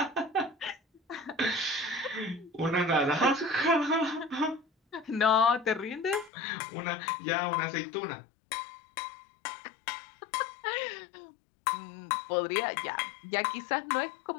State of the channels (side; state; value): right; drops out; at 6.3 s